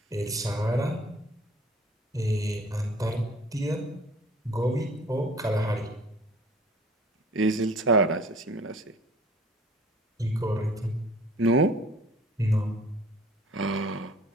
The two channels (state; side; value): normal; both; correlation 0.50